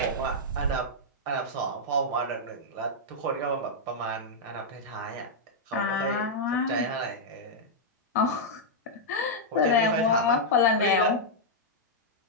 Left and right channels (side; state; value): both; normal; correlation -0.06